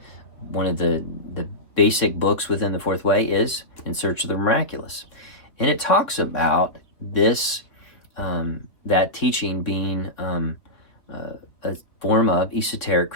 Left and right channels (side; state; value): right; late; 3.3 ms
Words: one of the basic books within the Fourth Way is In Search of the Miraculous. And it talks about this, that teaching being a form of esoteric